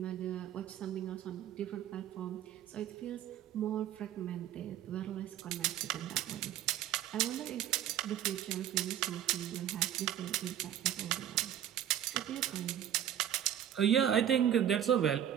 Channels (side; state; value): left; quieter; 10.7 dB